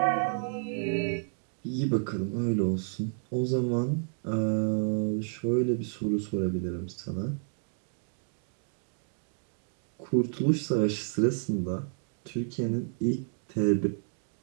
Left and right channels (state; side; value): silent; left; 57 dB below the other